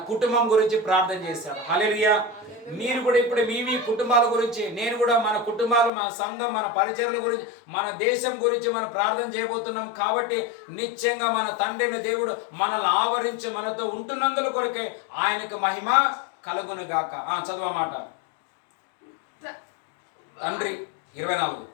కుటుంబం గురించి ప్రార్థన చేశాడు. హల్లెలూయా. మీరు కూడా ఇప్పుడు మీ కుటుంబాల గురించి, నేను కూడా మన కుటుంబాలు, మన సంఘం, మన పరిచర్ల గురించి, మన దేశం గురించి మనం ప్రార్థన చేయబోతున్నాం. కాబట్టి నిశ్చయంగా మన తండ్రిని దేవుడు మనల్ని ఆవరించి మనతో ఉంటున్నందుల కొరకే ఆయనకు మహిమ కలుగును గాక. చదవమాట. తండ్రి 24.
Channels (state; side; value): drops out; right; at 5.9 s